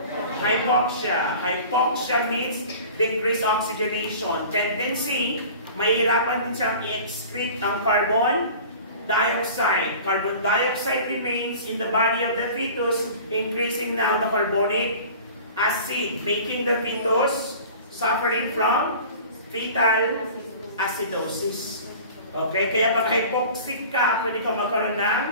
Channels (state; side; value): inverted; both; correlation -0.42